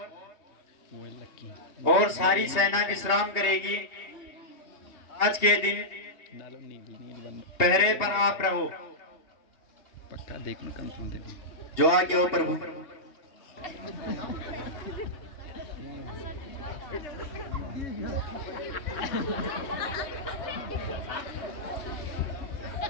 सारी सेना विश्राम करेगी। आज के दिन पहरे पर आप रहो। पक्का देखना, कंफर्म देखना। जो आगे हो प्रभु।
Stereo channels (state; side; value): late; right; 3.2 ms